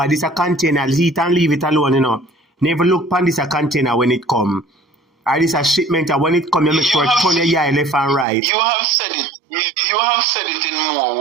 this a container, heat and leave it alone, Never look upon this a container when it come. Or this a shipment, and when it come, you make sure it turn your eye left and right. You have said it. You have said it in more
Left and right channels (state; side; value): drops out; left; at 8.2 s